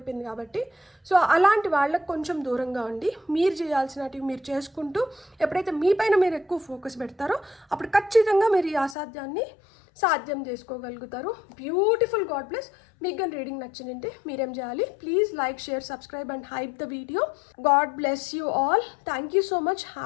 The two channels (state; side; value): drops out; right; at 9.0 s